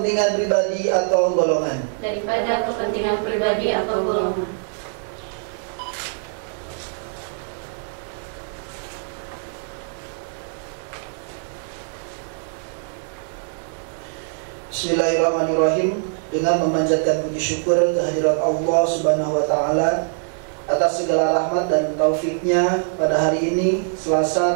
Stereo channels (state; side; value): silent; left; digital silence